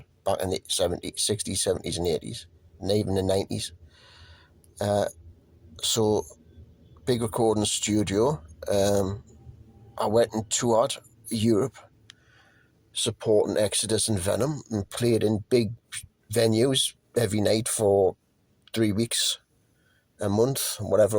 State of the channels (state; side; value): identical; both; correlation 1.00